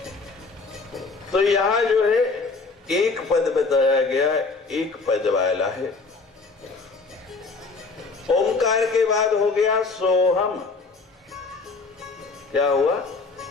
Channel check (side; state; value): right; quieter; 4.1 dB